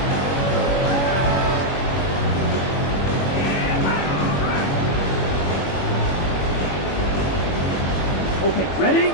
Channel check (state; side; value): late; right; 21 ms